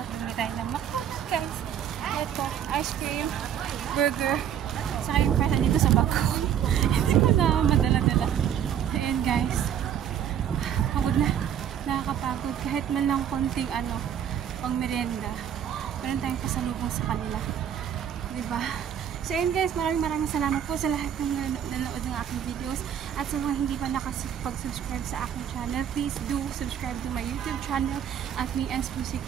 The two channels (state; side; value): quieter; left; 9.4 dB